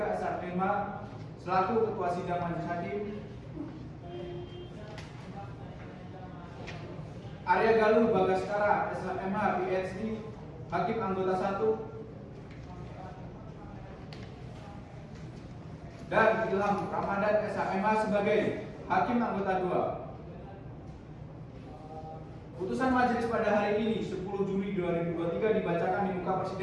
SHMH selaku Ketua Sidang Majelis Hakim. Arya Galuh Bagaskara SHMH PhD Hakim Anggota 1 dan Ilham Ramadan SHMH sebagai Hakim Anggota 2. Putusan majelis pada hari ini 10 Juli 2023 dibacakan di muka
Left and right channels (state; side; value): identical; both; correlation 1.00